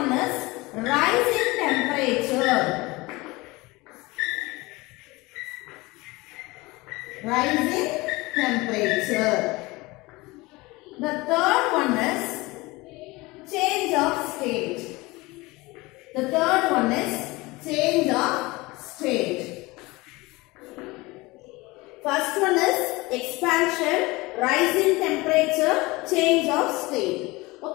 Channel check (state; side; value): quieter; right; 22.3 dB